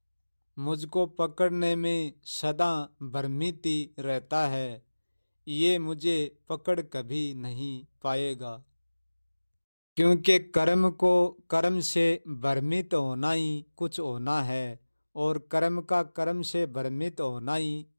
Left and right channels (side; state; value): both; inverted; correlation -1.00